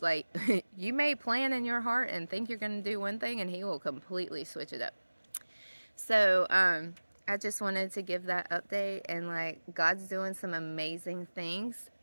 Like you may plan in your heart and think you're going to do one thing, and He will completely switch it up. So I just wanted to give that update, and like God's doing some amazing things,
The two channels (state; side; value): inverted; both; correlation -1.00